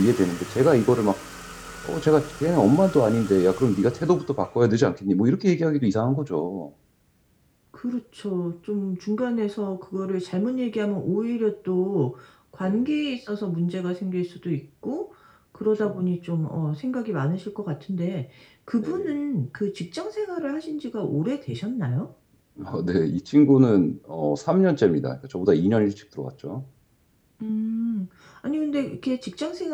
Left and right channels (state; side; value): identical; both; correlation 1.00